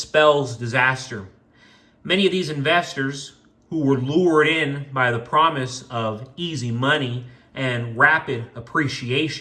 disaster. Many of these investors who were lured in by the promise of easy money and rapid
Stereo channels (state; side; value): identical; both; correlation 1.00